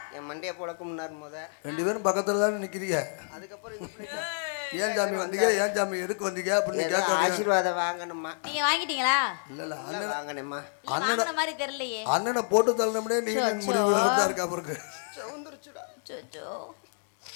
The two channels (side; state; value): right; silent; digital silence